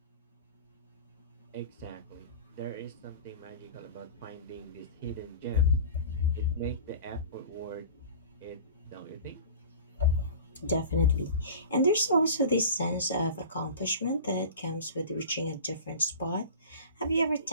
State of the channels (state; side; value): inverted; both; correlation -0.37